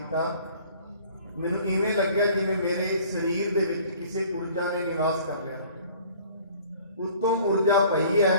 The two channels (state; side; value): inverted; both; correlation -0.51